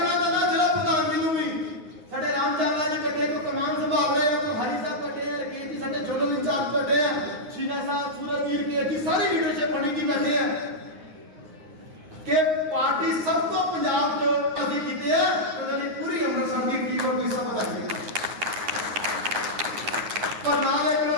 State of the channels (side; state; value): left; late; 9.5 ms